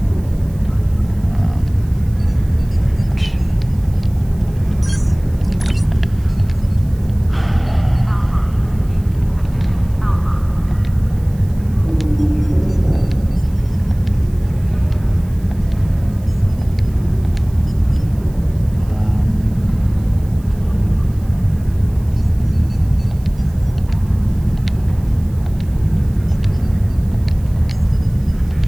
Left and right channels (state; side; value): noise; right; hiss, 27 dB below the sound